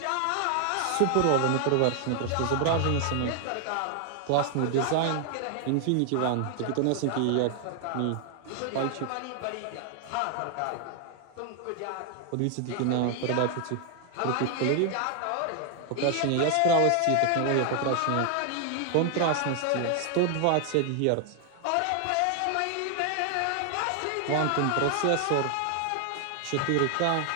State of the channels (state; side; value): different; both; correlation 0.00